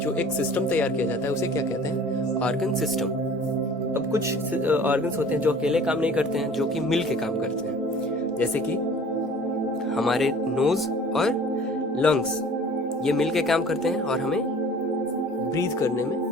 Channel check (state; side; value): normal; both; correlation 0.47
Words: एक सिस्टम तैयार किया जाता है उसे क्या कहते हैं? Organ system. अब कुछ ऑर्गन्स होते हैं जो अकेले काम नहीं करते हैं, जो कि मिल के काम करते हैं। जैसे कि हमारे नोज और लंग्स ये मिल के काम करते हैं और हमें ब्रीथ करने